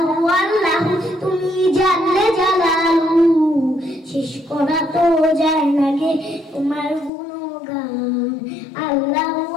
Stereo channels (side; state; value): right; drops out; at 7.1 s